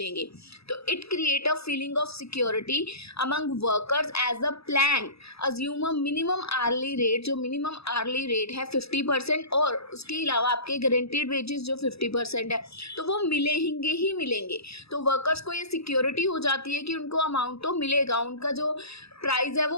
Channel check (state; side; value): late; right; 0.78 ms